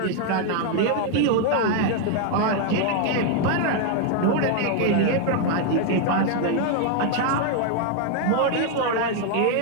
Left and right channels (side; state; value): both; different; correlation 0.01